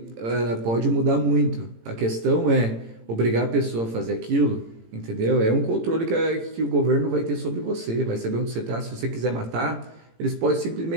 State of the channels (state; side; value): late; left; 18 ms